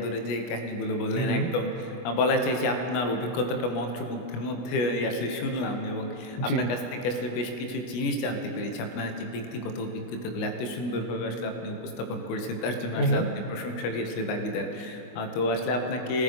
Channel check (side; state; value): right; late; 25 ms